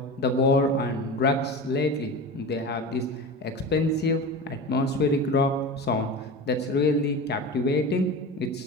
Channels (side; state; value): both; normal; correlation 0.29